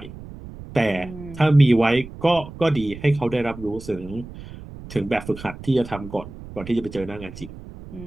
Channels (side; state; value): right; noise; rumble, 15 dB below the sound